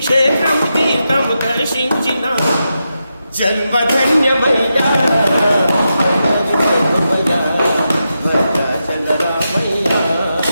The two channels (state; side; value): inverted; both; correlation -0.87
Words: తీర్థము దర్శించిన జన్మధన్యమయ్యా భద్రాచల రామయ్య